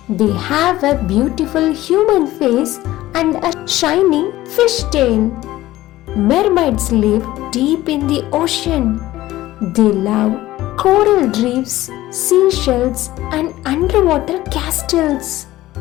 They have a beautiful human face and a shiny fish tail. Mermaids live deep in the ocean. They love coral reefs, seashells, and underwater castles.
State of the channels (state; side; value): quieter; right; 16.1 dB